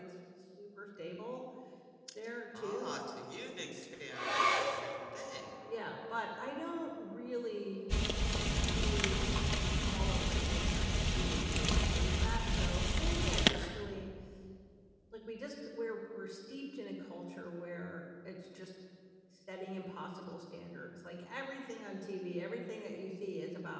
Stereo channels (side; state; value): both; identical; correlation 1.00